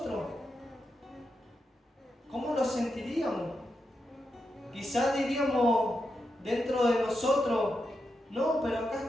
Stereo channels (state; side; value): normal; both; correlation 0.86